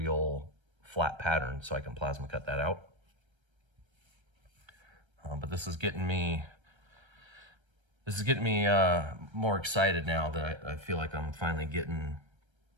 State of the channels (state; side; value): late; left; 1.3 ms